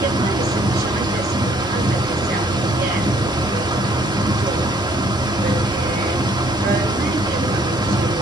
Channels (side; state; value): both; normal; correlation 0.62